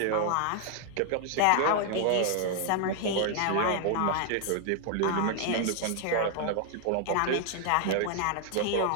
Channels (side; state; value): both; different; correlation 0.00